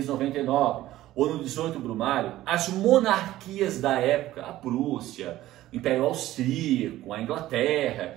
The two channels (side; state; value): left; quieter; 15.0 dB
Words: ou no 18 Brumário, as monarquias da época, a Prússia, o Império Austríaco, a Inglaterra,